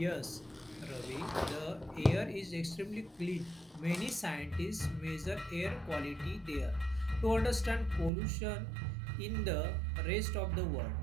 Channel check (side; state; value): left; drops out; at 8.1 s